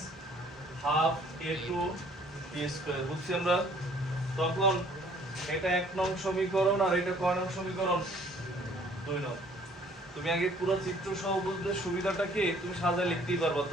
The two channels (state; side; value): normal; both; correlation 0.57